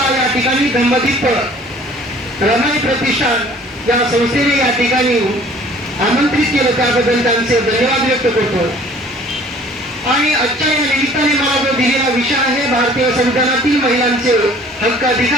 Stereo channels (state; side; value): normal; both; correlation 0.52